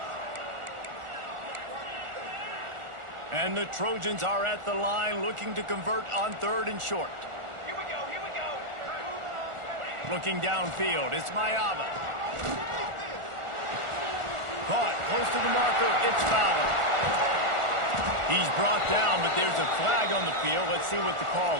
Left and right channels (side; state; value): left; late; 1.4 ms